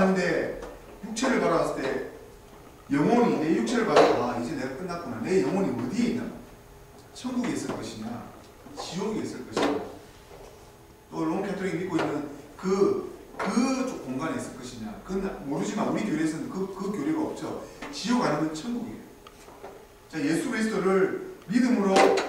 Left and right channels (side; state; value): both; identical; correlation 1.00